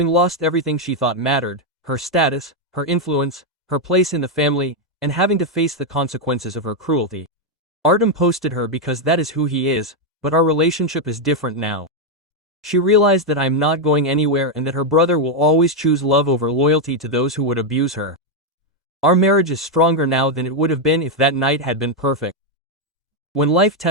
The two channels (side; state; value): both; normal; correlation 0.02